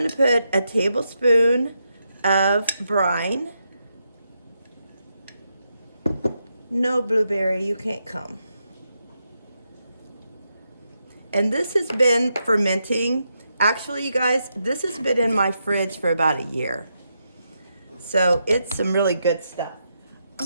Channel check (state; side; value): inverted; both; correlation -0.83